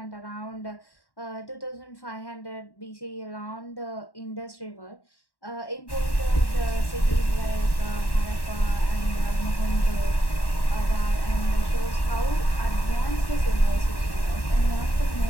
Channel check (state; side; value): late; right; 1.1 ms